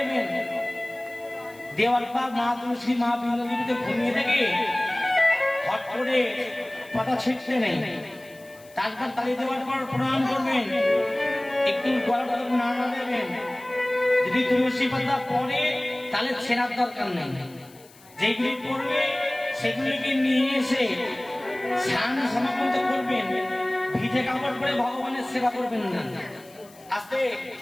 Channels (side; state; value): left; noise; hiss, 25 dB below the sound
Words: দেওয়ার পর মা তুলসী, মা বিন্দুতে ঘুমিয়ে থেকে হট করে পাতা ছিটতে নেই। তারপর তালি দেওয়ার পর প্রণাম করবেন, একটু গলা নাড়া দেবেন। যদি তুলসী পাতা পড়ে তাহলে ছেঁড়ার দরকার নেই, যেগুলি পড়বে সেগুলিকে নিয়ে এসে স্নান সমাপন করবেন। ভিজে কাপড় পরে ভগবানের সেবা করবেন না, আস্তে